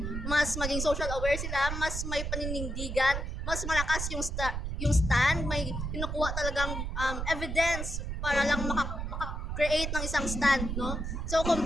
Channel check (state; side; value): noise; right; rumble, 3 dB below the sound